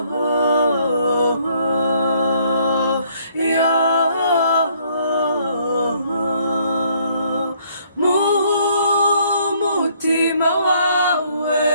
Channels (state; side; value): inverted; both; correlation -0.65